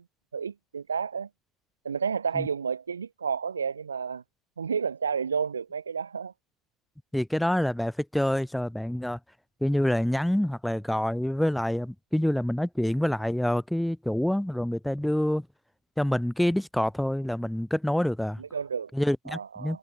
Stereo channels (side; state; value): both; normal; correlation 0.68